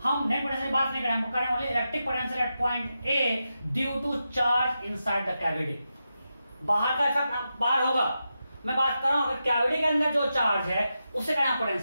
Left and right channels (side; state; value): both; inverted; correlation -0.89